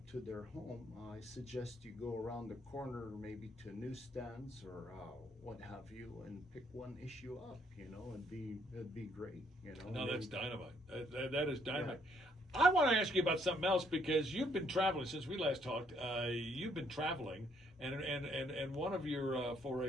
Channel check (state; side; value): normal; both; correlation 0.69